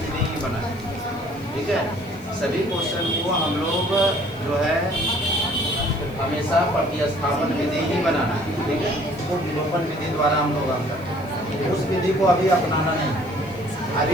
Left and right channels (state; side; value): noise; left; hiss, 26 dB below the sound